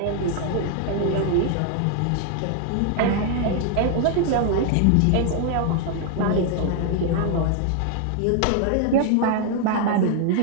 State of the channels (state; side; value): different; both; correlation 0.00